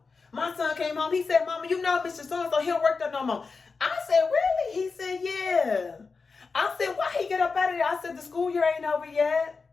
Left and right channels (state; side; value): quieter; right; 4.6 dB